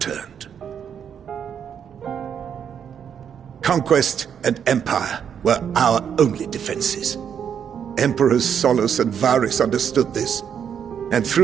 Conquest and empire were our only defenses. Emperors Solus and Varus understood this, and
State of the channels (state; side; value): quieter; left; 8.1 dB